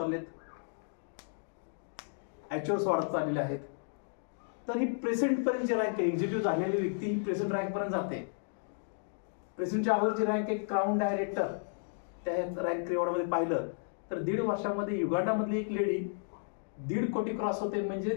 ॲक्च्युअल्स वाढत चाललेले आहेत. तर ही प्रेझेंटपर्यंत जी रँक आहे एक्झिक्युटिव्ह झालेली व्यक्ती ही प्रेझेंट रँकपर्यंत जाते. प्रेझेंटच्या अगोदरची रँक आहे क्राऊन डायरेक्टर. त्या रँक रिवॉर्डमध्ये पाहिलं तर 1.5 वर्षामध्ये युगांडामधली एक लेडी 1.5 कोटी क्रॉस होते. म्हणजे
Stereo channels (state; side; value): silent; right; digital silence